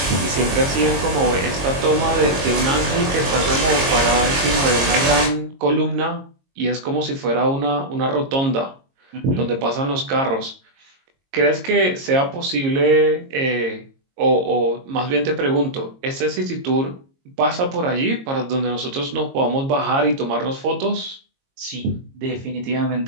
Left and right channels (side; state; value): left; late; 22 ms